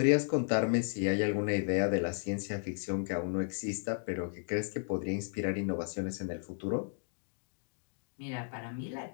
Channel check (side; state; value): right; silent; digital silence